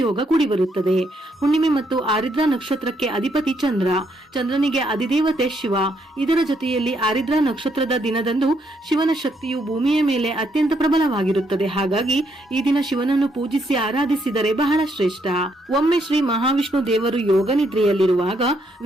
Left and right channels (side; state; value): both; normal; correlation 0.74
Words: ಯೋಗ ಕೂಡಿ ಬರುತ್ತದೆ. ಹುಣ್ಣಿಮೆ ಮತ್ತು ಆರಿದ್ರಾ ನಕ್ಷತ್ರಕ್ಕೆ ಅಧಿಪತಿ ಚಂದ್ರ, ಚಂದ್ರನಿಗೆ ಅಧಿದೇವತೆ ಶಿವ. ಇದರ ಜೊತೆಯಲ್ಲಿ ಆರಿದ್ರಾ ನಕ್ಷತ್ರದ ದಿನದಂದು ಶಿವನ ಶಕ್ತಿಯು ಭೂಮಿಯ ಮೇಲೆ ಅತ್ಯಂತ ಪ್ರಬಲವಾಗಿರುತ್ತದೆ. ಹಾಗಾಗಿ ಈ ದಿನ ಶಿವನನ್ನು ಪೂಜಿಸಿ ಆರಾಧಿಸಿದರೆ ಬಹಳ ಶ್ರೇಷ್ಠ. ಒಮ್ಮೆ ಶ್ರೀ ಮಹಾವಿಷ್ಣು ದೇವರು ಯೋಗ ನಿದ್ರೆಯಲ್ಲಿರುವಾಗ